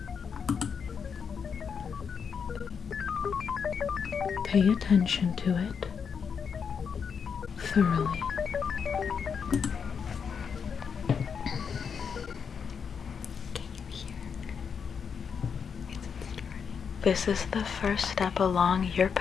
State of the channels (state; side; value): quieter; right; 6.5 dB